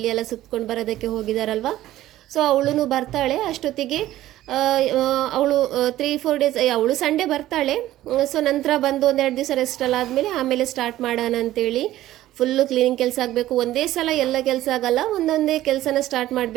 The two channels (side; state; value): left; quieter; 14.5 dB